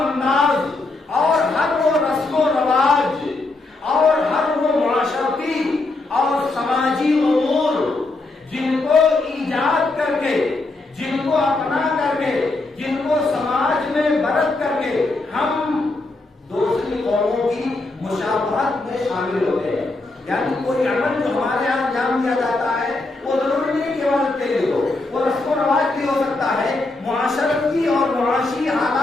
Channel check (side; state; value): right; quieter; 3.2 dB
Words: اور ہر وہ رسم و رواج اور ہر وہ معاشرتی اور سماجی امور جن کو ایجاد کر کے، جن کو اپنا کر کے، جن کو سماج میں برت کر کے ہم دوسری قوموں کی مشابہت میں شامل ہوتے ہیں۔ یعنی کوئی عمل جو ہمارے یہاں انجام دیا جاتا ہے وہ ضروری نہیں کہ عبادت کے لیے ہو، وہ رسم و رواج بھی ہو سکتا ہے، معاشرتی اور معاشی